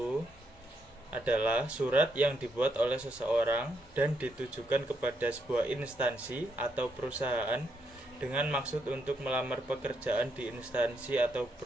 adalah surat yang dibuat oleh seseorang dan ditujukan kepada sebuah instansi atau perusahaan dengan maksud untuk melamar pekerjaan di instansi atau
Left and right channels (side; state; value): both; normal; correlation 0.78